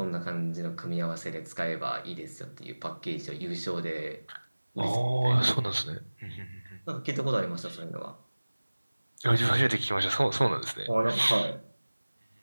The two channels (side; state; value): both; inverted; correlation -1.00